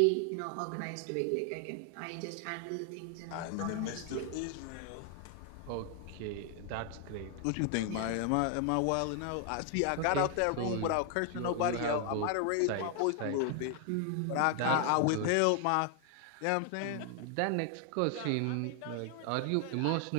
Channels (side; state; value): both; different; correlation 0.00